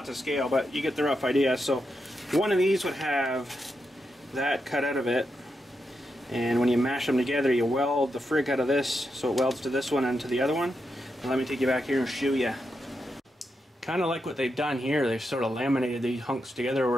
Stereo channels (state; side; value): normal; both; correlation 0.85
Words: to scale, but you get the rough idea. So one of these would have that cut out of it, and when you mash them together, you weld the frig out of this, so it welds to this one and to the other one. And let me take you back here and show you. Kind of like what they've done here. They've sort of laminated these hunks together